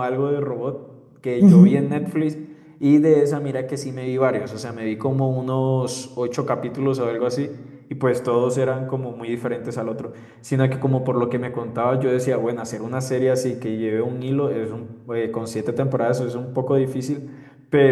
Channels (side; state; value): both; identical; correlation 1.00